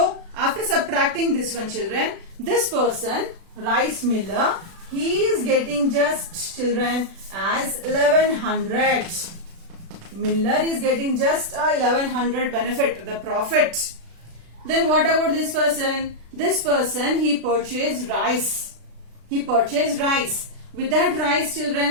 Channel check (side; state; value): left; late; 36 ms